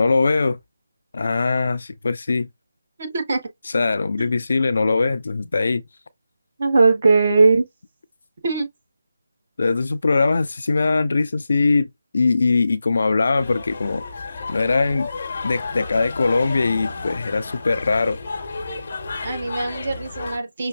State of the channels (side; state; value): both; inverted; correlation -0.91